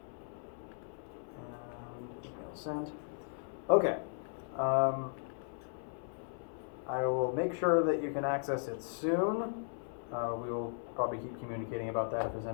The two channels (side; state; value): right; silent; 53 dB below the other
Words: And email sent. Okay. I will make sure that you can access it soon. We will probably keep communicating about that if there's